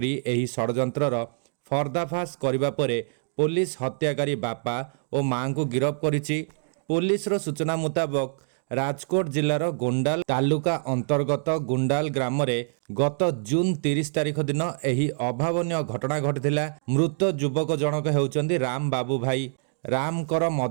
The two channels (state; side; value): silent; left; digital silence